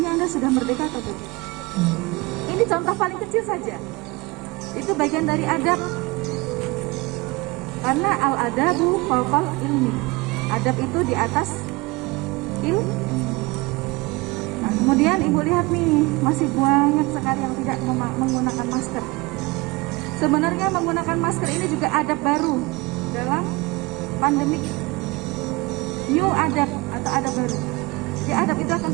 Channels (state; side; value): quieter; left; 24.0 dB